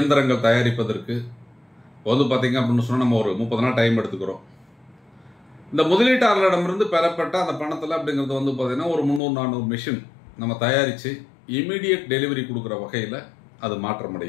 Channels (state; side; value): drops out; right; at 9.2 s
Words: தயாரிப்பதற்கு வந்து பார்த்தீங்க அப்படின்னு சொன்னால் நம்ம ஒரு 30 நாள் டைம் எடுத்துக்கிறோம். இந்த முதலீட்டாளர்களிடமிருந்து பெறப்பட்ட அந்த பணத்தில் அப்படிங்கிறது வந்து பார்த்தீங்கன்னா ஒரு 300-400 மிஷின் நம்ம தயாரித்து இமீடியட் டெலிவரி கொடுக்குற வகையில் அது